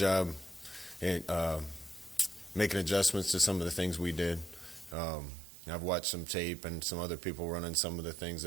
in making adjustments to some of the things we did. I've watched some tape and some other people running some of the things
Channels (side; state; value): left; drops out; at 5.0 s